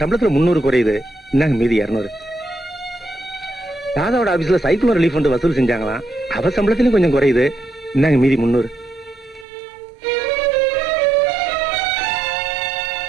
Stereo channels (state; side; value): drops out; left; at 9.5 s